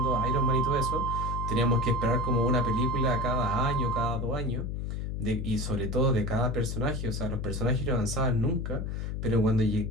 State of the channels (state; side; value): noise; left; hum, 3 dB below the sound